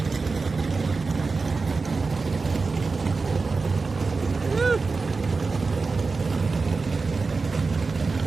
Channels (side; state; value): left; quieter; 4.2 dB